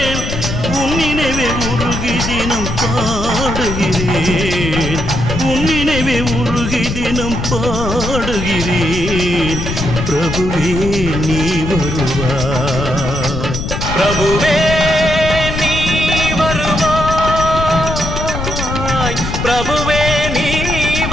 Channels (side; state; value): left; noise; rumble, 4 dB below the sound